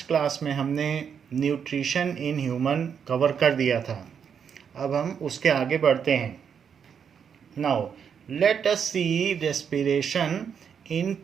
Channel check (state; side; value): quieter; left; 7.3 dB